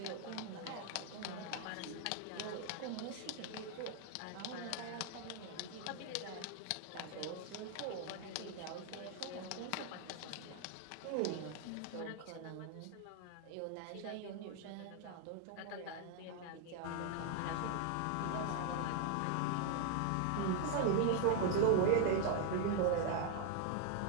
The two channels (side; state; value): both; different; correlation 0.00